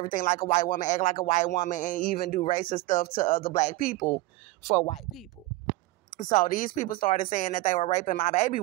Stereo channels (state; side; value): quieter; left; 19.2 dB